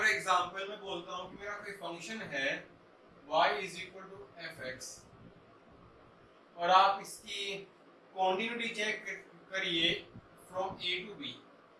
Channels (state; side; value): identical; both; correlation 1.00